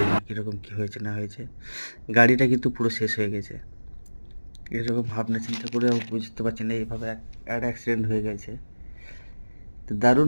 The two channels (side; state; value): both; inverted; correlation -1.00